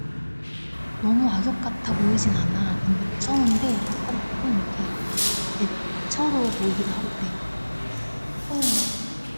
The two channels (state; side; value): inverted; both; correlation -1.00